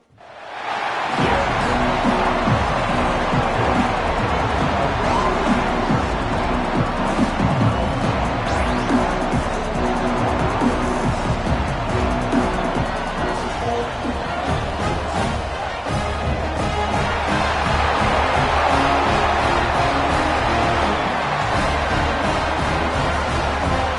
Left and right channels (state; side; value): identical; both; correlation 1.00